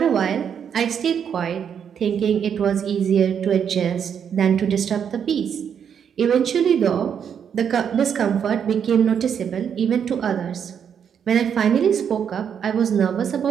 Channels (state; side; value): quieter; left; 7.9 dB